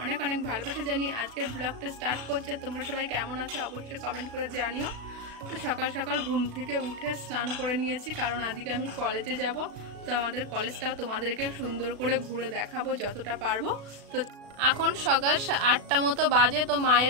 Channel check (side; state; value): left; late; 36 ms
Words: অনেক অনেক ভালোবাসা জানিয়ে আজকের ব্লগটা স্টার্ট করছে। তোমরা সবাই কেমন আছো অবশ্যই কমেন্ট করে জানিও। তো সকাল সকাল ঘুম থেকে উঠে স্নান করে নিয়েছি, কারণ আজকে আমি কলেজে যাব। তো আমাদের কলেজটাও তোমাদেরকে সুন্দর করে ঘুরে দেখাবো যতটা পারবো। তো এখন সকাল 8টা মতো বাজে। তো